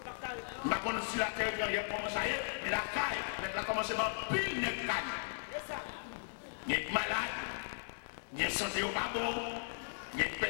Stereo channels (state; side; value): silent; right; 53 dB below the other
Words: Je ne sais pas si la terre est commencé à y aller, mais la caille, elle a commencé à pile de caille. Il y a des malades, il y a des santé au pas bon, il y a des